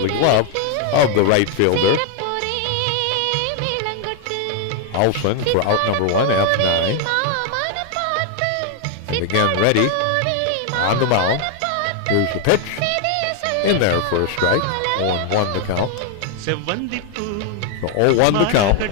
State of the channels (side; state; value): both; different; correlation 0.00